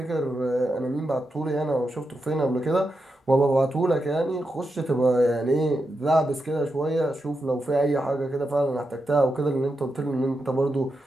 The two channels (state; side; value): normal; both; correlation 0.87